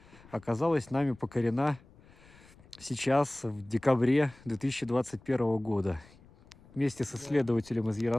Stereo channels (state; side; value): noise; left; rumble, 25 dB below the sound